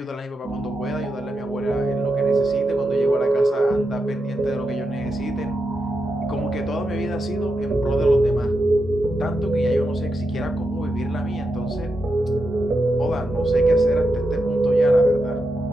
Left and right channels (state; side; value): normal; both; correlation 0.86